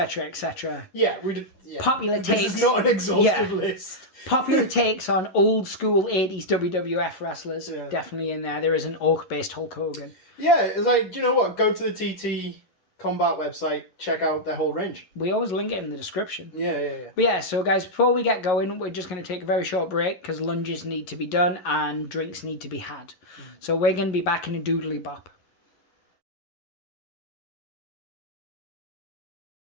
etc. Yeah, we did. Yeah. Popular takes. This is not an exhaustive list. Popular takes on old school 80s WWF wrestlers. Yeah. Definitely in there. There is an orc-based Hulk Hogan. Yeah, it's like, do you know what? Go to the TT Combat website, check out their whole range. We always link it in the description. Yeah. But yeah, so guys, before we get going, we're just going to take a very short break because lunges need to be done and drinks need to be had. So we're going to be back in a doodly bop.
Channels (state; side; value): late; right; 11 ms